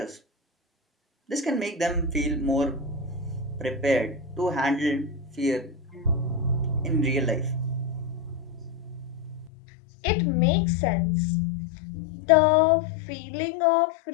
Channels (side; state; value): right; drops out; at 9.5 s